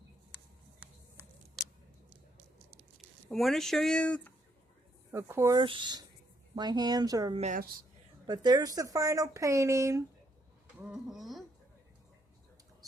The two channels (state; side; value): normal; both; correlation 0.73